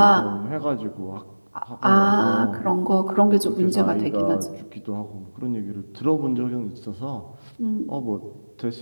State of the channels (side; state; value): both; inverted; correlation -1.00